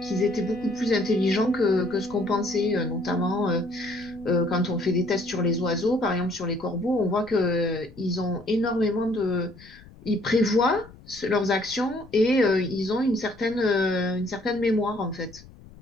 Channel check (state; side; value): noise; left; rumble, 22 dB below the sound